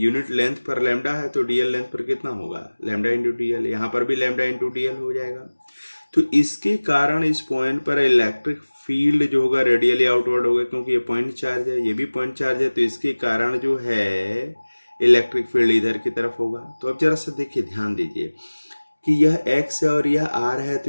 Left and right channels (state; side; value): inverted; both; correlation -1.00